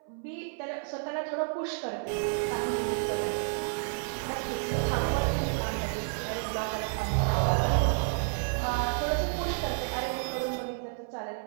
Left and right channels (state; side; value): silent; left; 57 dB below the other